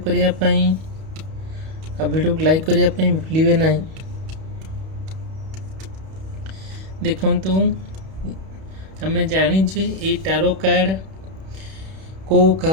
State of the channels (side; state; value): left; late; 31 ms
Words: करने वीडियो को लाइक करने भूलिए ना। देखंतु आम जाचे ये टारो कार्ड को